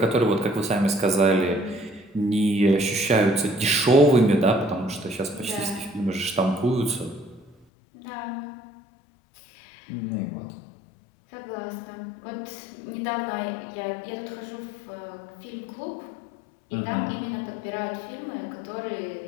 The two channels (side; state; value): right; drops out; at 7.7 s